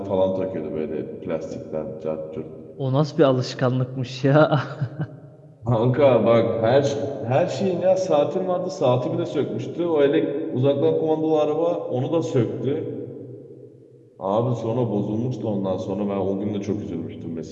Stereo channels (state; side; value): identical; both; correlation 1.00